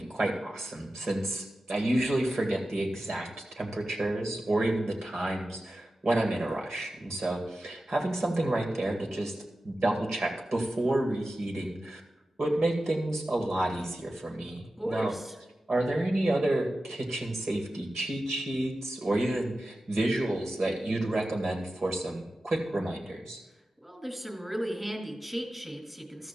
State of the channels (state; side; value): normal; both; correlation 0.93